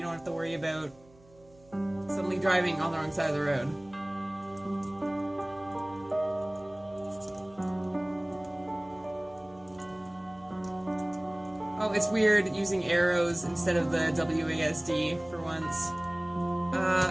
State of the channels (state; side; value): noise; right; hum, 27 dB below the sound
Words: have to worry about suddenly driving on the wrong side of the road. Oh, it's weird using arrows instead of the WASD for once.